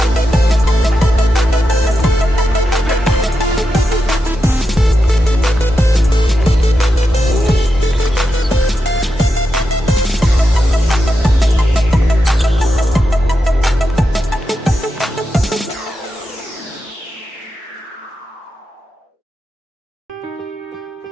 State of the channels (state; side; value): normal; both; correlation 0.87